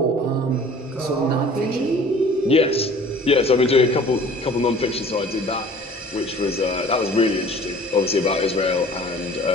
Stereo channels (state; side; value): normal; both; correlation 0.48